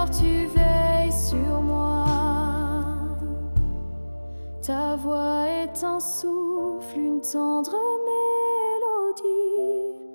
tu veilles sur moi. Ta voix est un souffle, une tendre mélodie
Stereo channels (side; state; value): both; inverted; correlation -1.00